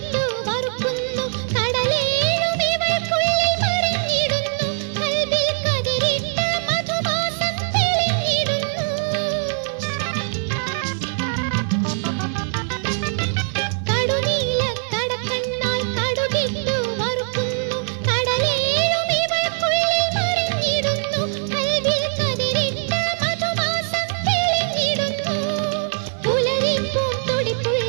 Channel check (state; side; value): silent; left; digital silence